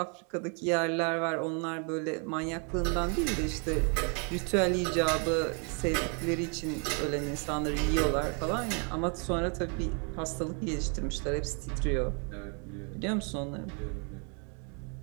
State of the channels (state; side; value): quieter; left; 37.7 dB